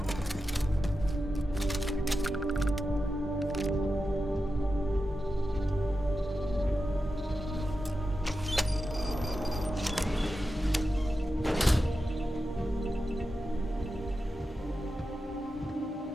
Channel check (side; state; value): both; normal; correlation 0.91